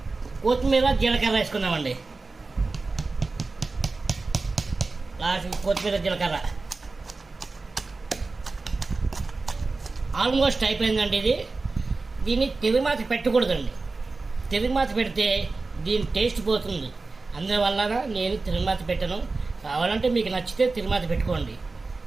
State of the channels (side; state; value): left; quieter; 3.7 dB